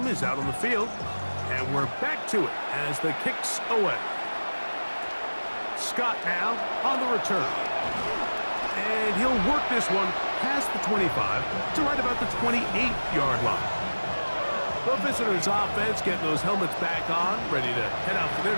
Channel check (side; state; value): both; inverted; correlation -1.00